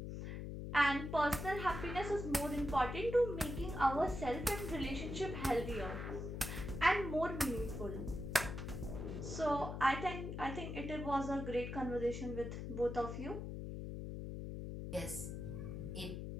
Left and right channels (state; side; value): noise; left; hum, 6 dB below the sound